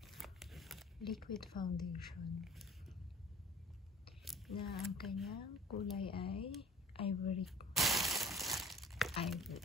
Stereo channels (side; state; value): both; normal; correlation 0.46